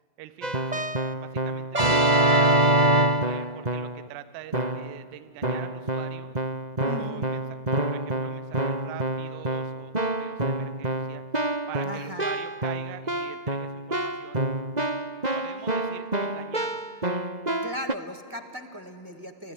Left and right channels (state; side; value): late; left; 2.0 ms